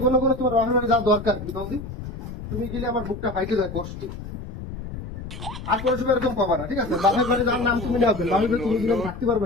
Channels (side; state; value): left; noise; rumble, 10 dB below the sound